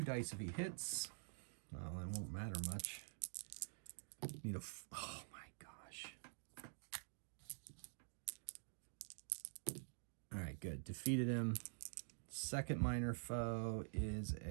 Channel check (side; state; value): left; silent; digital silence